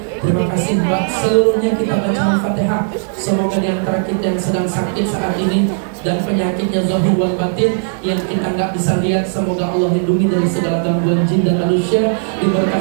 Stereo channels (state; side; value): silent; left; 67 dB below the other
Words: Terima kasih Mbak. Seluruhnya kita baca Al-Fatihah. Semoga di antara kita yang sedang sakit saat ini dan penyakitnya zahir wal batin yang kita nggak bisa lihat, semoga Allah lindungi dari segala gangguan jin dan manusia,